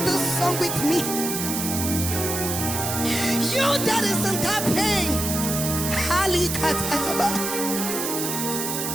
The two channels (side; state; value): right; noise; hiss, 3 dB below the sound